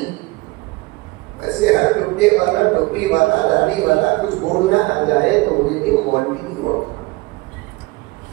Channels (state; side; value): quieter; left; 22.4 dB